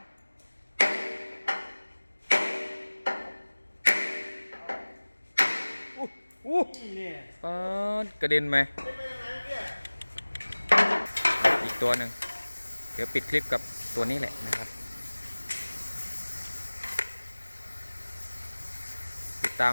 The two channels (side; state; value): both; inverted; correlation -1.00